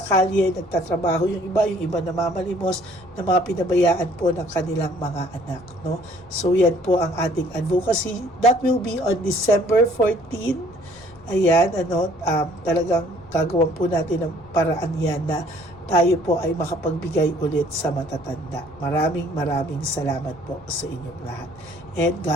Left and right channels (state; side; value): noise; left; rumble, 24 dB below the sound